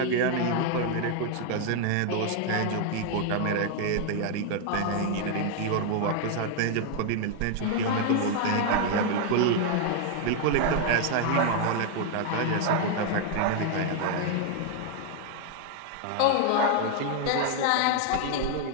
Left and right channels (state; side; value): different; both; correlation 0.00